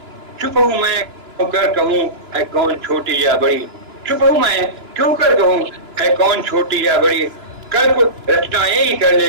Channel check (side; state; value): left; late; 3.0 ms